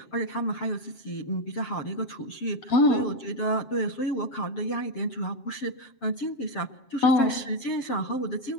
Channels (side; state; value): right; late; 7.4 ms